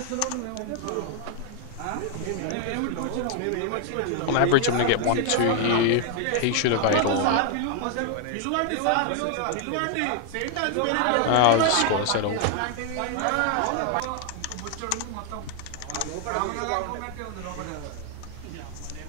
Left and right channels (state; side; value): different; both; correlation 0.00